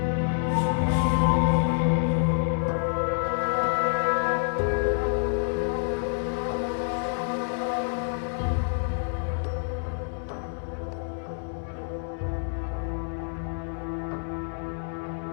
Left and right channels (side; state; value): right; silent; digital silence